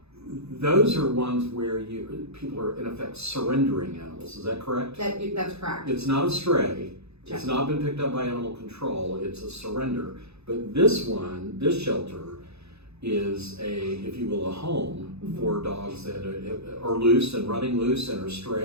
Those are ones where people are in effect surrendering animals. Is that correct? That's correct. It's not a stray. Check. It's not been picked up by animal control. It's a surrender. But this shelter, is if you will, a home for dogs that are loose and running loose and are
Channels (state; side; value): late; left; 0.79 ms